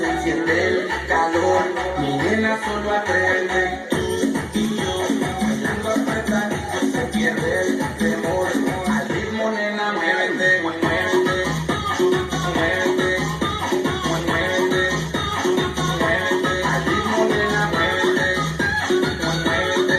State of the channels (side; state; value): both; identical; correlation 1.00